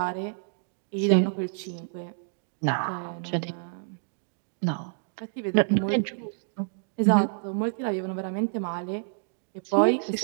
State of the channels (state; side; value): silent; left; digital silence